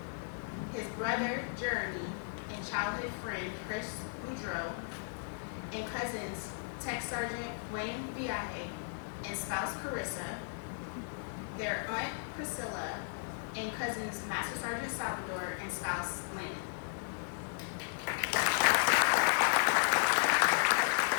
his brother, Jeremy, and childhood friend, Chris Boudreaux, and cousins, Tech Sergeant Wayne Viaje and spouse, Carissa, their aunt, Priscilla, and cousins, Master Sergeant Salvador and spouse, Lynn.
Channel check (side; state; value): right; silent; 54 dB below the other